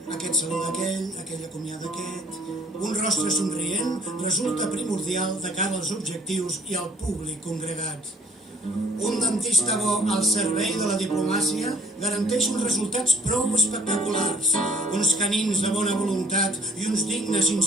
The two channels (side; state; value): both; normal; correlation 0.58